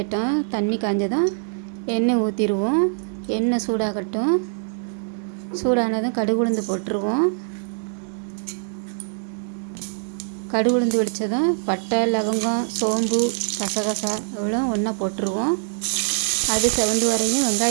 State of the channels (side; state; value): left; silent; digital silence